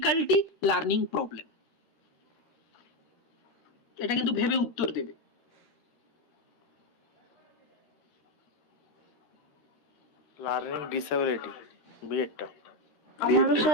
learning problem. এটা কিন্তু ভেবে উত্তর দেবে। লার্নিং ডিসেবিলিটি বি এরটা। আমারও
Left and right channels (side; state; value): right; late; 13 ms